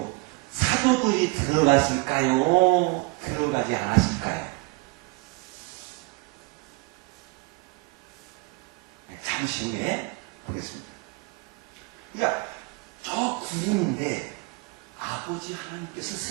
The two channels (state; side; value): quieter; left; 26.1 dB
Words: 사도들이 들어갔을까요? 들어가지 않았을까요? 잠시 후에 보겠습니다. 그러니까 저 구름인데 아버지 하나님께서